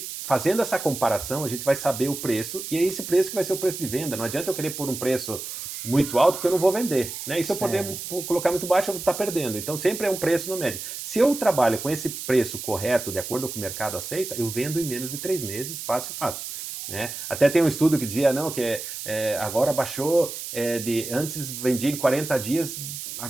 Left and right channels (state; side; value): noise; right; hiss, 8 dB below the sound